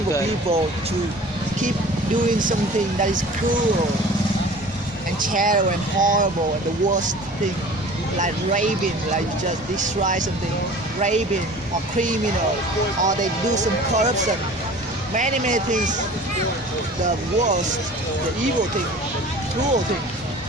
good. people to keep doing something that is cruel and terrible and horrible and the worst thing, like raping, like you just destroy something, raping or criminal, or they do some corruption, many things, the worst, the evil thing, the cruel thing,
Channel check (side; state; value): both; normal; correlation 0.43